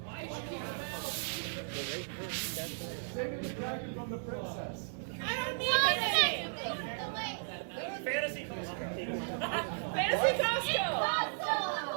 Saving the dragon from the princess. I don't need anything! Fantasy Costco. Fantasy Costco!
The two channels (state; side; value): silent; left; digital silence